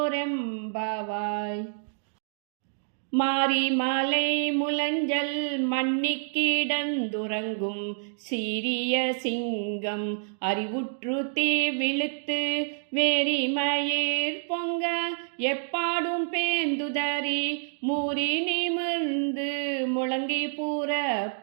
மாரி மலை முலஞ்சல் மண்ணிக்கிடந்துறங்கும் சீரிய சிங்கம் அறிவுற்று தீ விழுத்து வேரிமயிர் பொங்க எப்பாடும் பேந்துதறி மூறி நிமிர்ந்து முழங்கி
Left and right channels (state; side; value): silent; left; digital silence